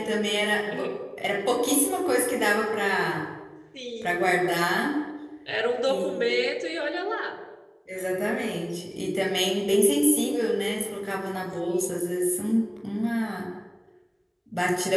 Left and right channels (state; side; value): identical; both; correlation 1.00